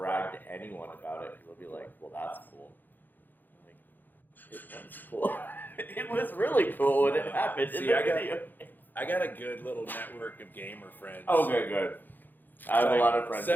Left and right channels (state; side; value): late; right; 0.088 ms